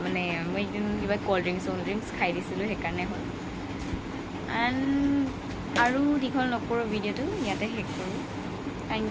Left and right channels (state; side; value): identical; both; correlation 1.00